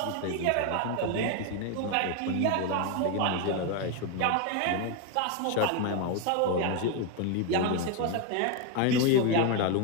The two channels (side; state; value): both; different; correlation 0.01